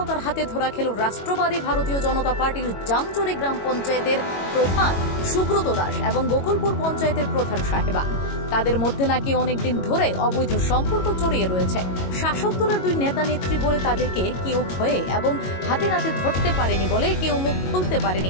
হাতে ধরা খেল রাষ্ট্রবাদী ভারতীয় জনতা পার্টির জামচুরি গ্রাম পঞ্চায়েতের প্রধান সুব্রত দাস এবং গোকুলপুর পঞ্চায়েতের প্রধান সাহেবা। তাদের মধ্যে নাকি অনেকদিন ধরে অবৈধ সম্পর্ক জড়িয়ে রয়েছে। শাসক দলের দুই নেতা নেত্রী বলে তাদেরকে কেউ ভয়ে এবং হাতে নাতে ধরতে পারেনি বলে কেউ মুখ খুলতে পারেনি।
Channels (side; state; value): right; late; 22 ms